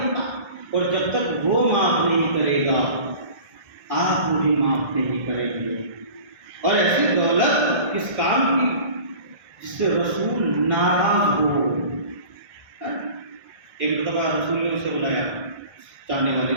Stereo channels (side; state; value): left; late; 1.6 ms